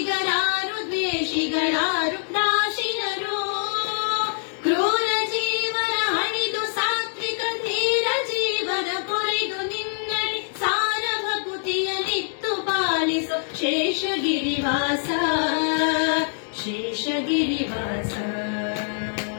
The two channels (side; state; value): right; silent; digital silence